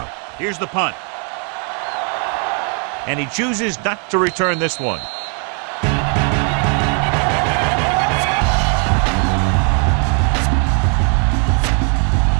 Here's the punt. And he chooses not to return this one.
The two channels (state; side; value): quieter; left; 39.8 dB